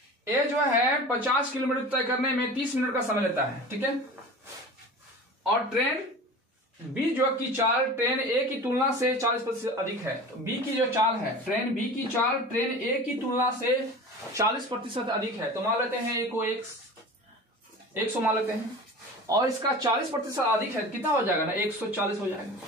A जो है 50 किलोमीटर तय करने में 30 मिनट का समय लेता है, ठीक है, और ट्रेन B जो की चाल ट्रेन A की तुलना से 40% अधिक है। तो B की जो चाल है, ट्रेन B की चाल ट्रेन A की तुलना से 40% अधिक है। तो मान लेते हैं A को 100 मान लेते हैं, और इसका 40% अधिक है, कितना हो जाएगा ना, 140 हो जाएगा,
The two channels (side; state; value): both; normal; correlation 0.36